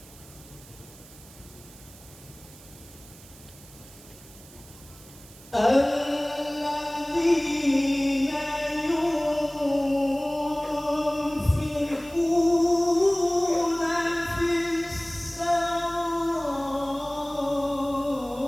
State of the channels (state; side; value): noise; right; hiss, 21 dB below the sound